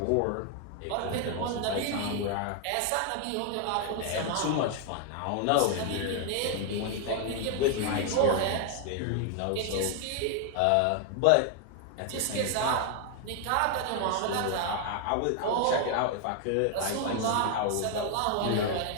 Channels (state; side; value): different; both; correlation 0.00